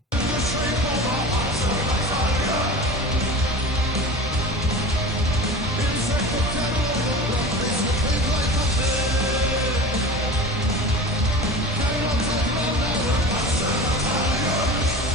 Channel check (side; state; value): both; normal; correlation 0.34